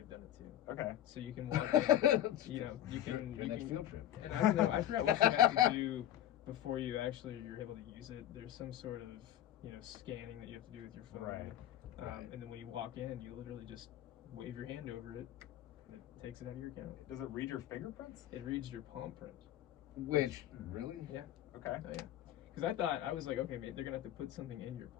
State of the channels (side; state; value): right; quieter; 12.1 dB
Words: done it too. Okay. So you can walk in, you know, you can your next field trip. And I don't know, I forgot what you have to do before you're able to use it. There's some sort of, you know, scanning that you have to do with your phone. And then when you walk in, you literally just wave your hand over it, and it takes it out of your account. Does it read your fingerprints? It reads your palm print. Which, really? Yeah. Okay. Oh, yeah. Because I was like, okay, they're gonna have to put something in your